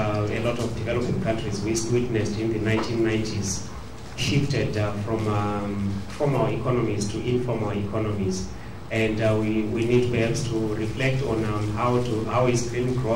lot of developing countries witnessed in the 1990s shifted from formal economies to informal economies. And we need perhaps to reflect on how is green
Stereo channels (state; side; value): identical; both; correlation 1.00